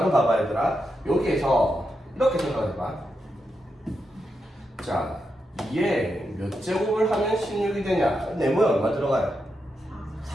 봐봐 얘들아. 여기에서 이렇게 생각해봐. 자, 2에 몇 제곱을 하면 16이 되냐? 네모에 얼마 들어가요?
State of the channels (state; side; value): normal; both; correlation 0.85